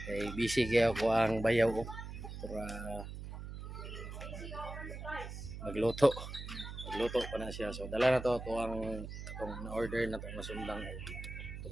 Kay busy kaya ako ang bayaw para magluto. Magluto pa na siya. So dala na to ang itong na-order na itong masundang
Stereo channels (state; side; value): noise; right; hum, 9 dB below the sound